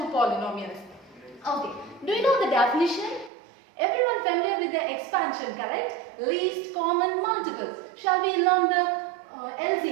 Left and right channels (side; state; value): left; drops out; at 3.3 s